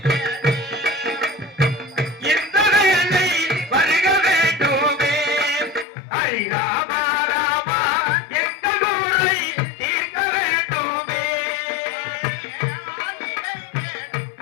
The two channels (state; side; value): drops out; right; at 5.9 s